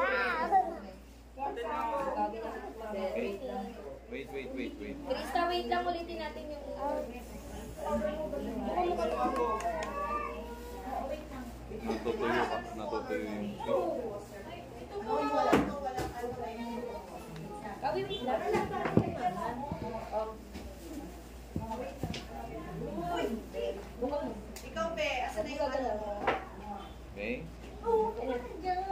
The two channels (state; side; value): identical; both; correlation 1.00